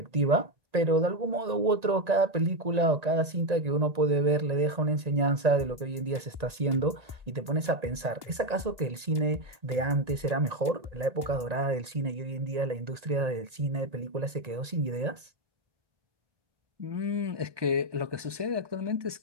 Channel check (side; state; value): left; late; 1.9 ms